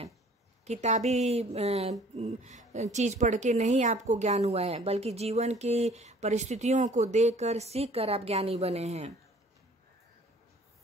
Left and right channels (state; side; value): normal; both; correlation 0.54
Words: किताबी चीज पढ़ के नहीं आपको ज्ञान हुआ है, बल्कि जीवन की परिस्थितियों को देखकर, सीखकर आप ज्ञानी बने हैं।